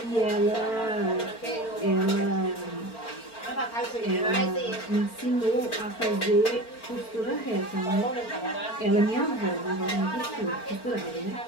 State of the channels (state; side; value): late; right; 4.4 ms